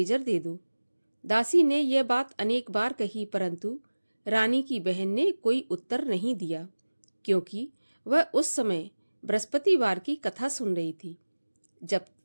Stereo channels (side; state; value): both; inverted; correlation -1.00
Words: दे दो। दासी ने यह बात अनेक बार कही, परंतु रानी की बहन ने कोई उत्तर नहीं दिया, क्योंकि वह उस समय बृहस्पतिवार की कथा सुन रही थी। जब